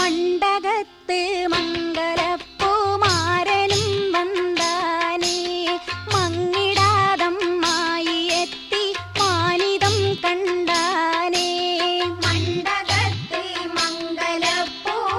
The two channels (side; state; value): both; identical; correlation 1.00